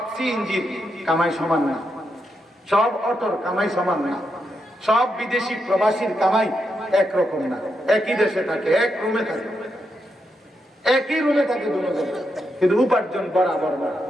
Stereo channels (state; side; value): normal; both; correlation 0.83